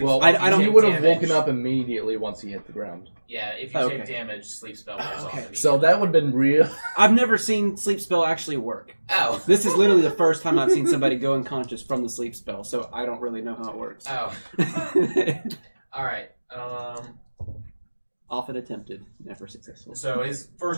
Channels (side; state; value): both; inverted; correlation -1.00